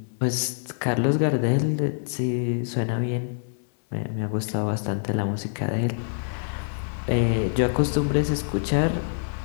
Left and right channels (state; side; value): silent; right; digital silence